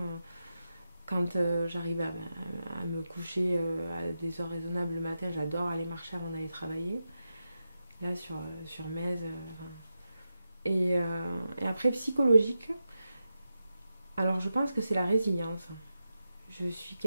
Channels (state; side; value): inverted; both; correlation -0.89